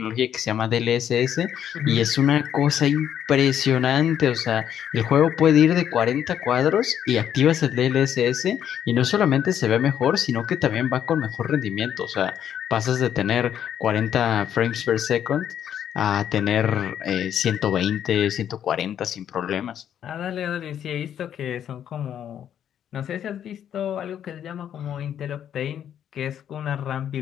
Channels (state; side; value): quieter; right; 9.6 dB